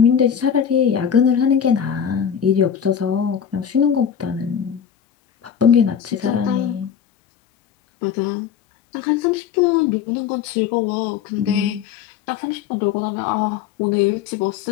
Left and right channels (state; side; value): quieter; right; 8.2 dB